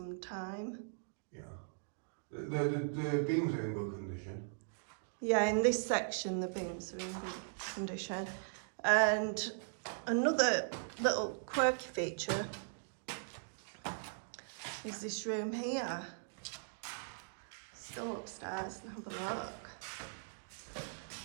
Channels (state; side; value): silent; left; digital silence